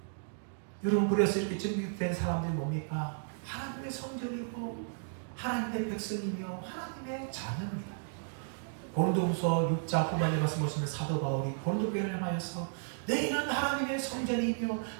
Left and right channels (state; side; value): silent; left; digital silence